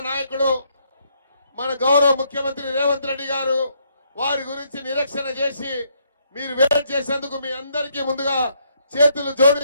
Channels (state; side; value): inverted; both; correlation -0.72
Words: నాయకుడు మన గౌరవ ముఖ్యమంత్రి రేవంత్ రెడ్డి గారు వారి గురించి నిరీక్షణ చేసి మీరు వెయిట్ చేసేందుకు మీ అందరికీ ముందుగా చేతులు